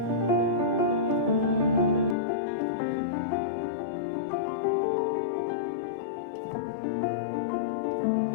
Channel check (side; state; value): right; drops out; at 2.1 s